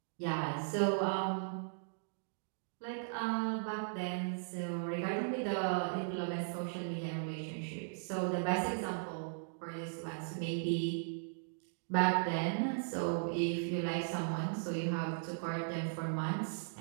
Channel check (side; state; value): left; silent; digital silence